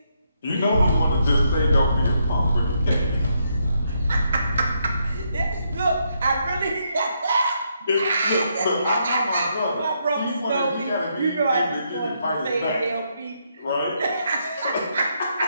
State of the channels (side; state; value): both; inverted; correlation -0.77